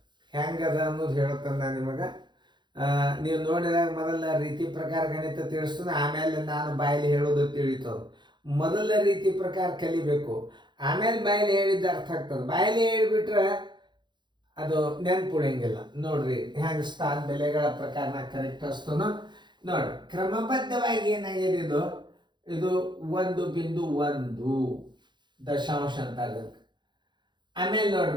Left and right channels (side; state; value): left; late; 0.22 ms